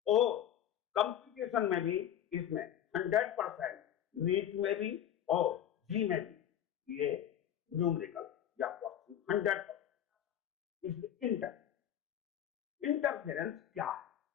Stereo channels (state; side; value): quieter; right; 10.5 dB